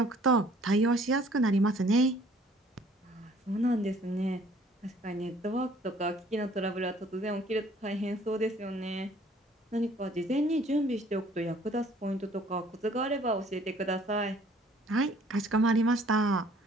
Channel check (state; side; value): normal; both; correlation 0.57